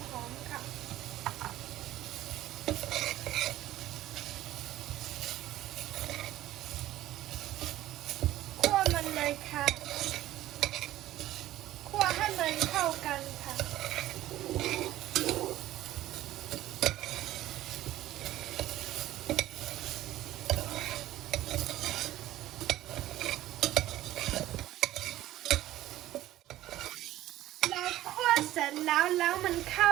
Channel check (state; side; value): quieter; left; 14.7 dB